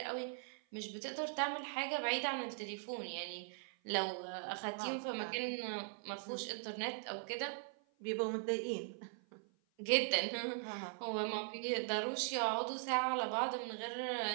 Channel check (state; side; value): silent; left; 51 dB below the other